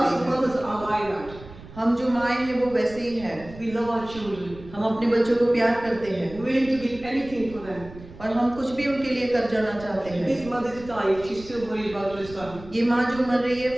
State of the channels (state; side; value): noise; right; rumble, 17 dB below the sound